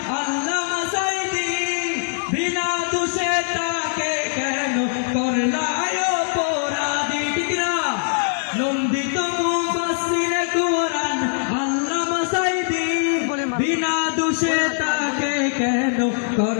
আল্লামা সাঈদী, বিনা দোষে তাকে কেন করলায় অপরাধী? ঠিক না? নন্দিত মুফাসসির কোরআন আল্লামা সাঈদী, বিনা দোষে তাকে কেন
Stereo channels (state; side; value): silent; right; 64 dB below the other